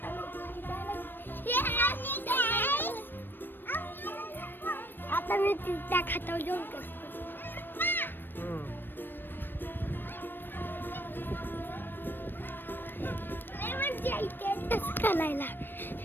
आता मी त्या खातावर जाऊन करतो.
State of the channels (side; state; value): right; late; 0.095 ms